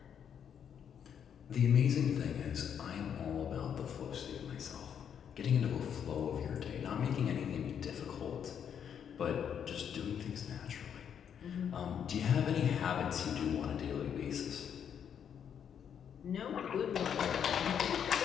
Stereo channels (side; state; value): right; quieter; 8.3 dB